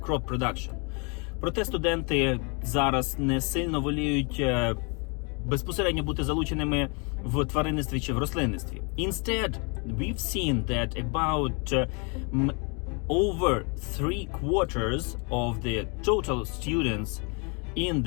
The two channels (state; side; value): quieter; right; 33.9 dB